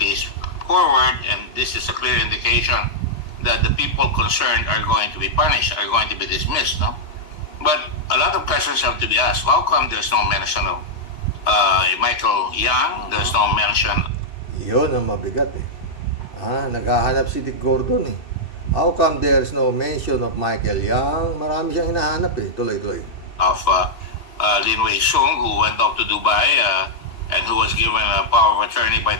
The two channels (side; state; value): right; late; 2.9 ms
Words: case forward, and this is a clear indication that the people concerned are going to be punished, are going to be dismissed, no? But a lot of questions have to be asked. How come there's no mention of Michael Yang? There's no mention. Yun ang mabigat naghahanap si Dick Gordon How come there's no mention of Michael Yang? Marami siyang hinahanap tuloy-tuloy. Of Lin Wei Shung, who went off to Dubai and who was given a power of attorney by